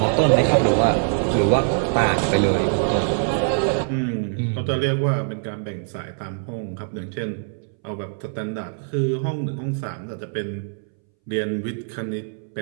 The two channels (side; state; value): left; silent; 63 dB below the other